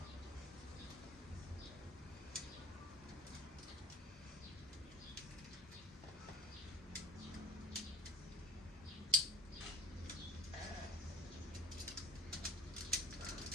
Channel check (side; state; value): both; normal; correlation 0.41